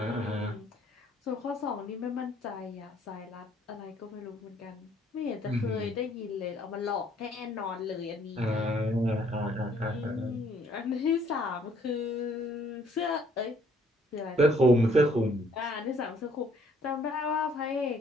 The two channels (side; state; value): both; normal; correlation 0.63